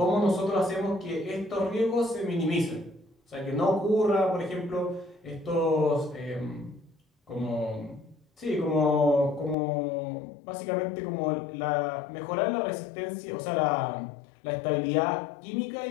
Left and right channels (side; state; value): right; drops out; at 9.6 s